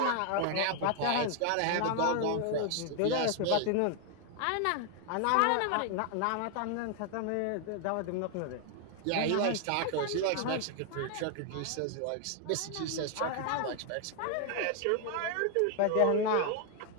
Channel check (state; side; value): different; both; correlation 0.00